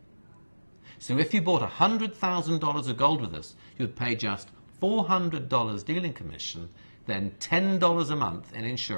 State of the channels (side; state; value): both; inverted; correlation -1.00